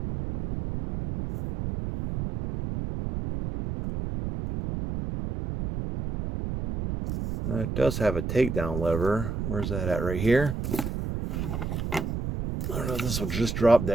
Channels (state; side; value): noise; right; rumble, 4 dB below the sound